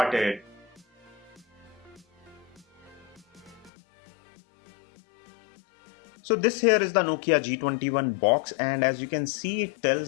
So this here is the Nokia G21 box, and as you can see, it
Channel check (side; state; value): right; drops out; at 3.7 s